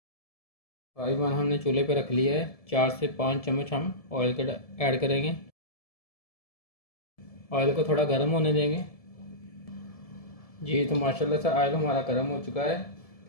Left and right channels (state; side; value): late; right; 1.7 ms